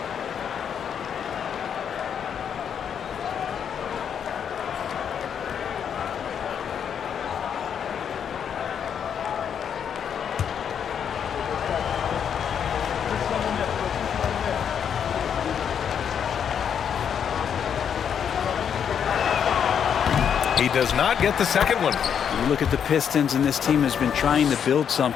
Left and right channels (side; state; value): right; quieter; 8.0 dB